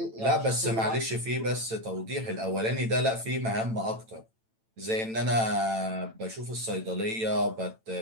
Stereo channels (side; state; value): left; late; 9.0 ms